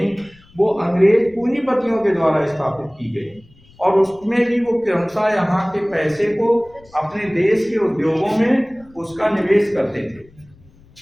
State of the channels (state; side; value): noise; left; rumble, 27 dB below the sound